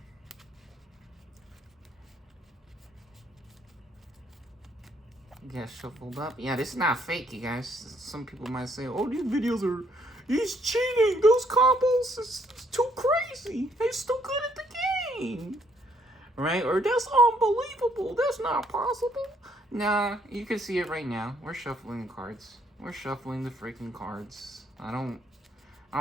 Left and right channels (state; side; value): normal; both; correlation 0.68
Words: Get shuffled up. Yeah, this is not fake, you guys. Some people might say, oh, these videos are... He's cheating. Those combos is too crazy. He's too good at the game. Right? Or that's unbelievable. That's not possible. Nah, you can see it right now. We're shuffling the cards. We're shuffling the freaking cards. I don't